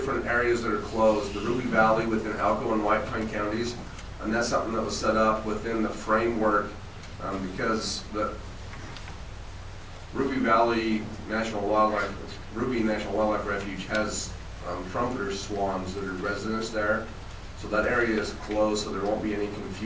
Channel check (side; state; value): both; identical; correlation 1.00